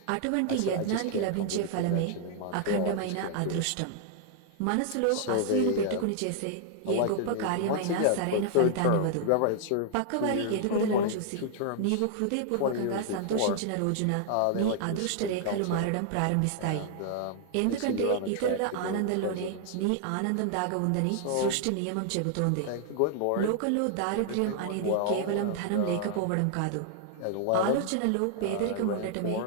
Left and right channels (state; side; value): different; both; correlation -0.01